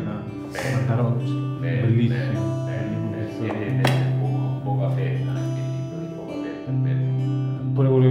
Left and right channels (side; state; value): both; identical; correlation 1.00